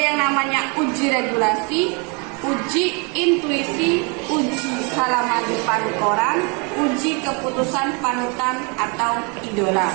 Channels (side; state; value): left; quieter; 32.9 dB